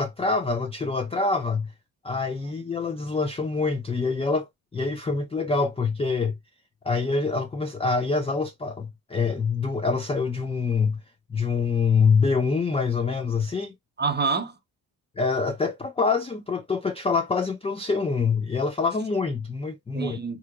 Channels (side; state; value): right; quieter; 3.8 dB